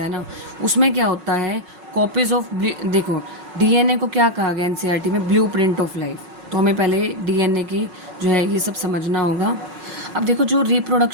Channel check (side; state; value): left; late; 5.4 ms